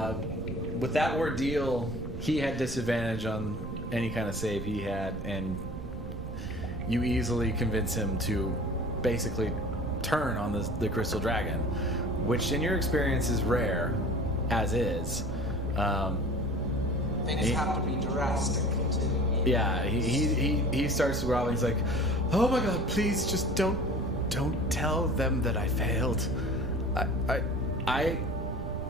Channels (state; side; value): noise; right; rumble, 9 dB below the sound